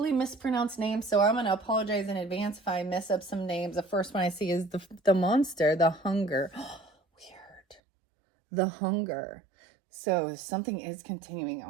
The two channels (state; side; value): drops out; left; at 7.8 s